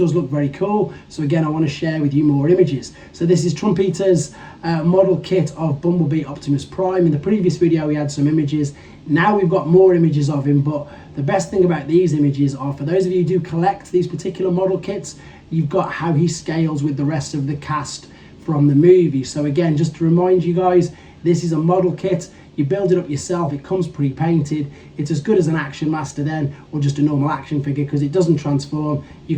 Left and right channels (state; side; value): identical; both; correlation 1.00